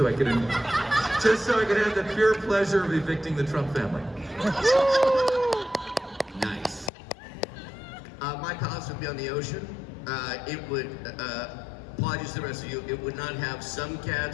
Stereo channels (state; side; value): drops out; right; at 6.9 s